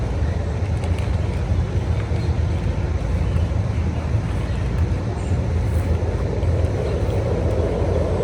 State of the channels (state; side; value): identical; both; correlation 1.00